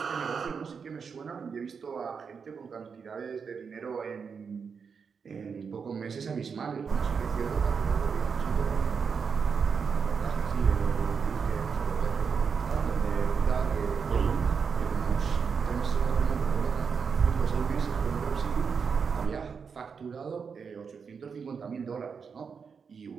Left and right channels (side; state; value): left; quieter; 6.0 dB